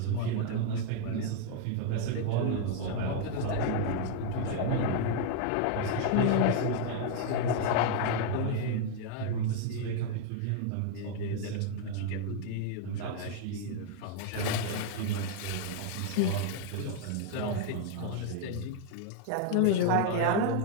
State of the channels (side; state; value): both; different; correlation 0.00